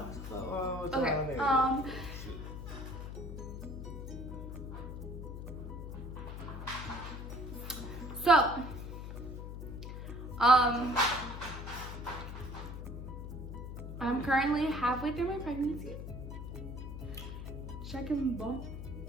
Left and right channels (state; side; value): noise; left; hum, 8 dB below the sound